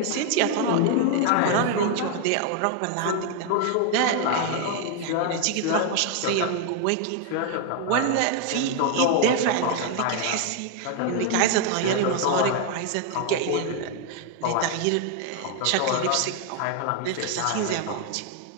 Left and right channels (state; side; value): different; both; correlation 0.00